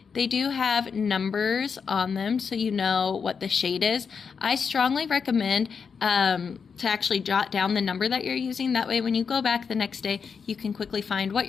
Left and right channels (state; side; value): quieter; right; 6.0 dB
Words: They do have numbers on them so you know what the shade is. I strongly recommend to actually jot down the number that you're using. That way when you go back the next day, you can quickly find what